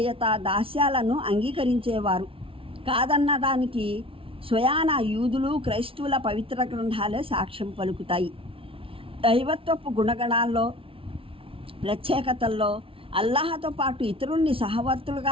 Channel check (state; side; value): late; left; 0.26 ms